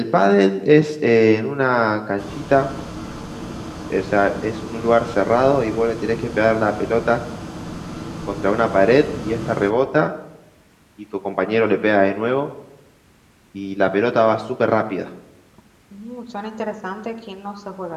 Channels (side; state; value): both; identical; correlation 1.00